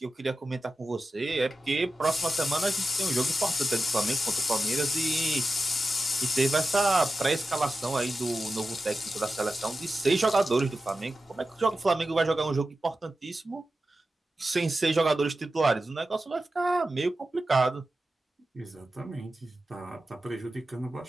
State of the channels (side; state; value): both; normal; correlation 0.93